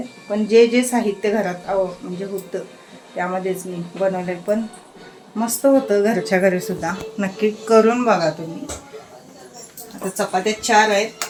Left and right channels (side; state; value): both; identical; correlation 1.00